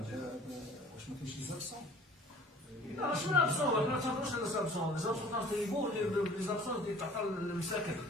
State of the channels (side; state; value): both; normal; correlation 0.49